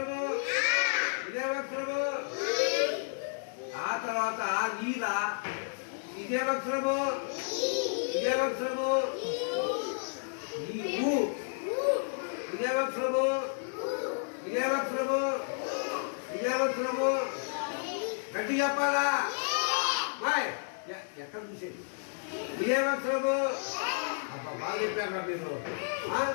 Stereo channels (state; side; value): silent; right; digital silence